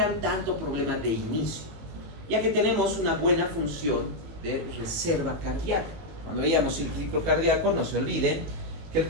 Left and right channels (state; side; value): late; left; 19 ms